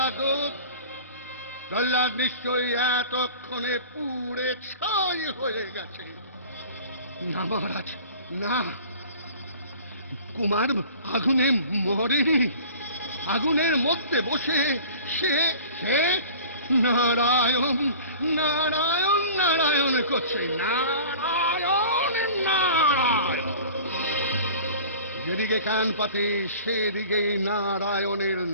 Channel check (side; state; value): both; inverted; correlation -0.42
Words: প্রহ্লাদ নিশ্চয়ই এতক্ষণে পুড়ে ছাই হয়ে গেছে। না মহারাজ, না, কুমার আগুনে মরেনি। আগুনের মধ্যে বসে সে সে নারায়ণ নারায়ণ নারায়ণ করছে। নারায়ণ নারায়ণ! যেদিকে কান পাতে সেদিকেই নারায়ণের